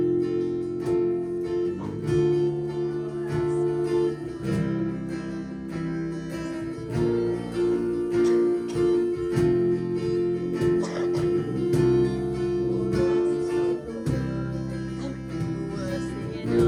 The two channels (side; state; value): both; identical; correlation 1.00